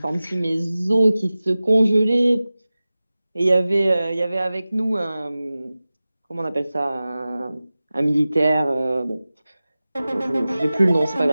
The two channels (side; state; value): both; inverted; correlation -0.96